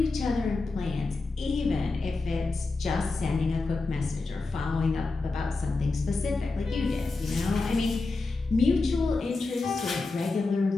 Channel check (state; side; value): quieter; right; 3.6 dB